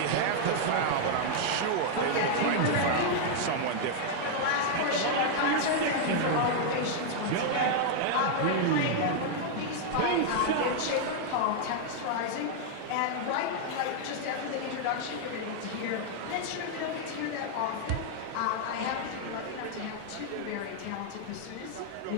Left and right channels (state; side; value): different; both; correlation 0.00